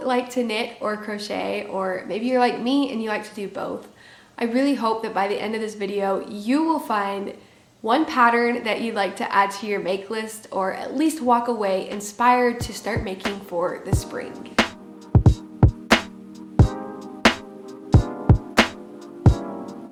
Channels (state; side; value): identical; both; correlation 1.00